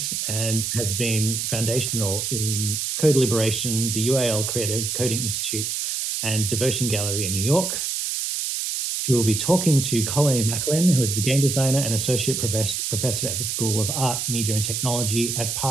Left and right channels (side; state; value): right; noise; hiss, 2 dB below the sound